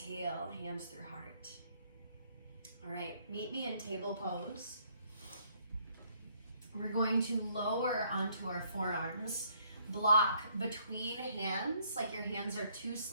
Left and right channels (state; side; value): inverted; both; correlation -0.67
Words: hands through heart. All right, meet me in table pose. We're going to lower onto our forearms, block between hands like your hands are two